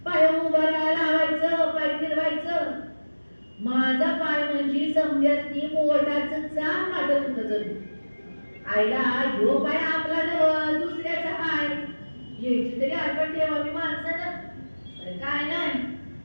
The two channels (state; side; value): inverted; both; correlation -1.00